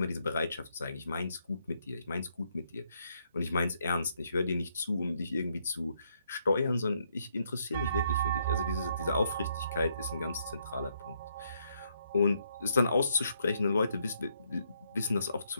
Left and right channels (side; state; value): both; inverted; correlation -0.74